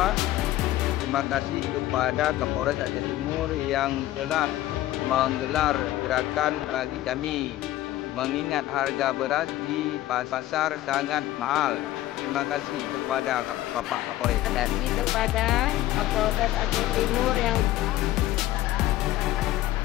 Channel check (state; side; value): quieter; right; 15.1 dB